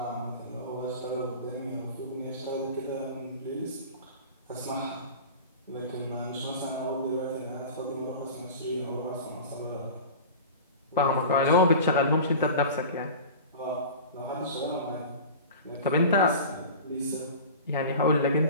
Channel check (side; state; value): both; inverted; correlation -0.35